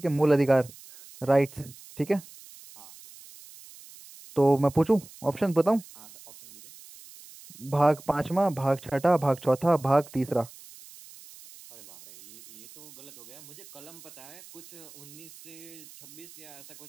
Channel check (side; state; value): right; noise; hiss, 20 dB below the sound